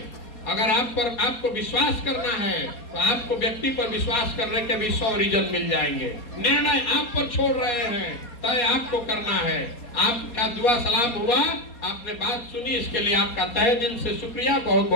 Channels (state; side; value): late; right; 4.2 ms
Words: अगर आपको विश्वास करना है तो आपको व्यक्ति पर विश्वास करने के भी 100 रीजन मिल जाएंगे। निर्णय आप पर छोड़ रहे हैं, तय आपको करना है। आपका दुआ सलाम हुआ, आपने बात सुनी, इसके लिए आपका तहे दिल से शुक्रिया, बहुत